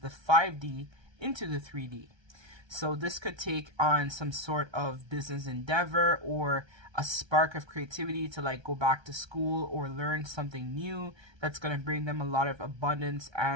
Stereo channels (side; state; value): left; late; 1.3 ms